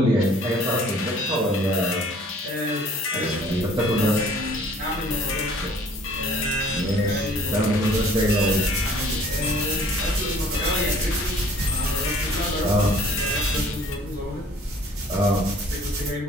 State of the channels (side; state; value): both; normal; correlation 0.54